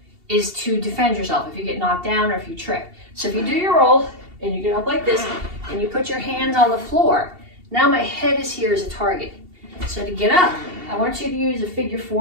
is to defend yourself if you get knocked down or if you trip. So if you do your roll and you get up like this and you put your hands on the floor, now my head is here as a target. So to get up, I want you to use a figure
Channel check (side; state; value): left; late; 2.7 ms